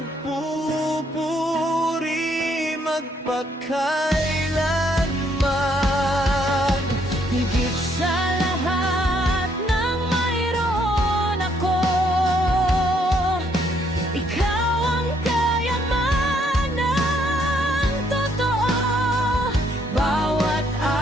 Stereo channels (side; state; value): both; normal; correlation 0.70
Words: magpakailanman. Higit sa lahat ng mayroon ako, ikaw ang kayamanang totoo. Bawat